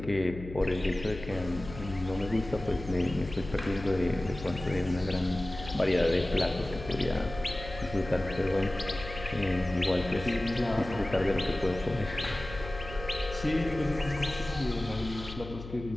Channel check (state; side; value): noise; left; hum, 12 dB below the sound